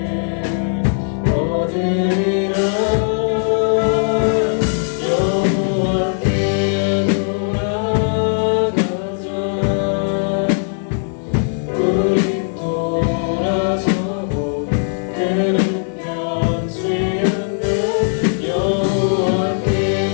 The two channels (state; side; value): silent; right; 62 dB below the other